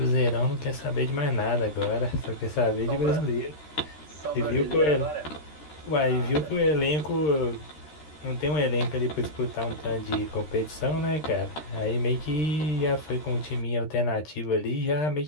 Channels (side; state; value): right; late; 13 ms